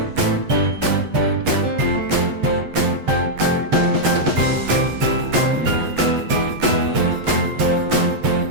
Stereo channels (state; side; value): late; left; 8.1 ms